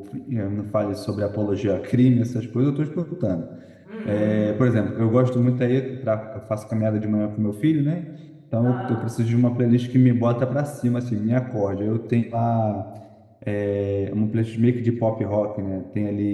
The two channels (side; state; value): both; identical; correlation 1.00